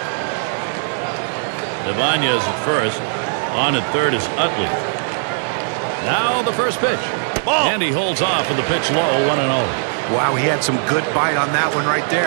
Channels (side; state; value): left; silent; digital silence